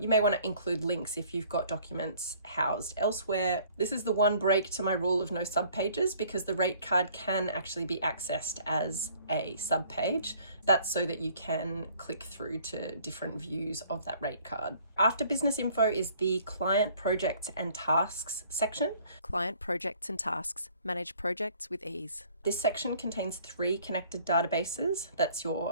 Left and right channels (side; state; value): both; inverted; correlation -0.57